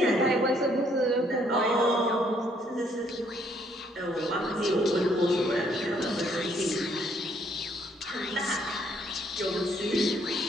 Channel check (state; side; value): normal; both; correlation 0.67